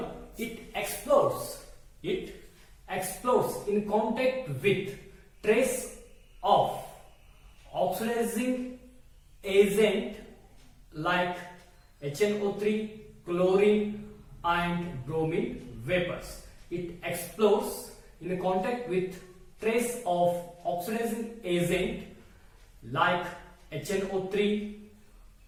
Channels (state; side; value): identical; both; correlation 1.00